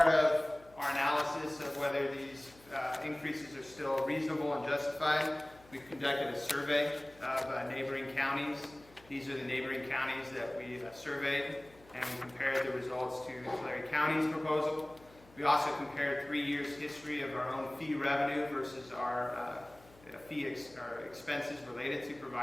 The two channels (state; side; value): noise; left; hum, 25 dB below the sound